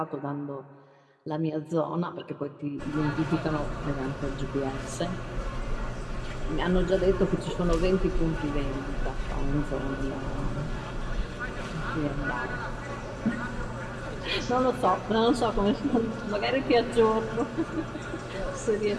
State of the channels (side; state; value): both; identical; correlation 1.00